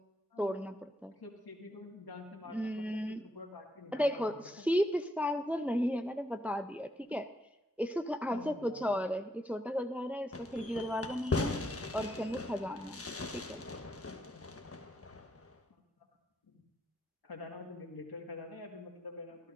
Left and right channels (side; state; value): both; normal; correlation 0.78